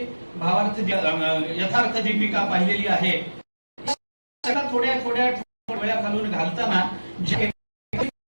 भावार्थ यथार्थ दीपिका पाहिलेली आहे. थोड्या थोड्या वेळा घालून घालताना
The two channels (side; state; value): both; inverted; correlation -1.00